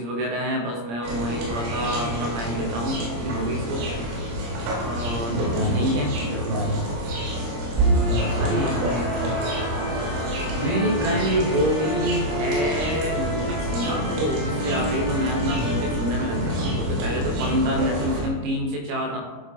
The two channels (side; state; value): left; late; 26 ms